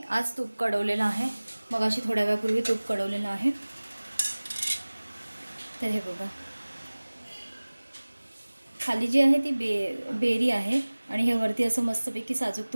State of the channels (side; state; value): both; inverted; correlation -1.00